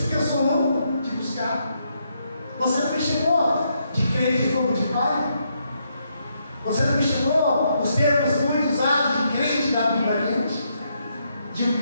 que eu sou louco de buscar. Você não me chamou de crente de fogo de pai? Você não me chamou os termos muito usados de crente da Bíblia crente? De um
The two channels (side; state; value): both; inverted; correlation -0.77